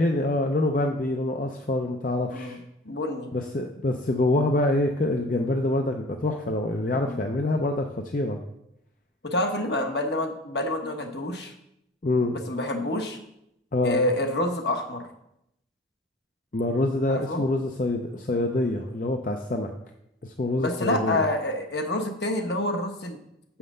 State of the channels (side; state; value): both; normal; correlation 0.38